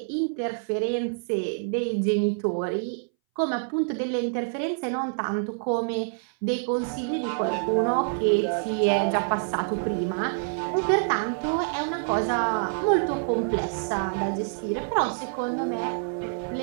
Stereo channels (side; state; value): left; silent; 60 dB below the other